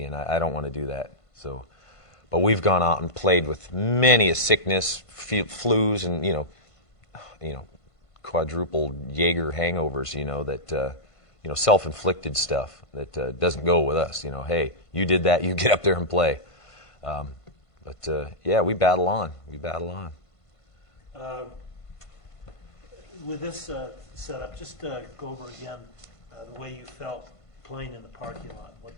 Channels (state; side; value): late; right; 1.5 ms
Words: and I don't want to do that. But we've gone out and played with many a sickness, flus, and quadruple Jaeger hangovers, that self-inflicted stuff that doesn't go with us. Hey, you did that, you get up there and play. But we battle on. With this setup, just go over again the way you felt playing in the parking lot,